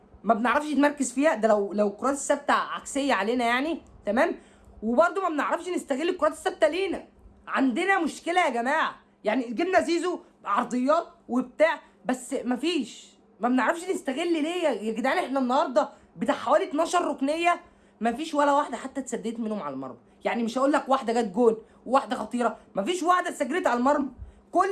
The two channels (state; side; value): identical; both; correlation 1.00